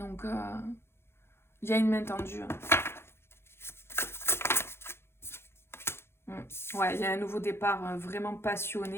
il y a une main tendue. Ouais, il y a un nouveau départ vraiment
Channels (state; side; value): late; right; 0.12 ms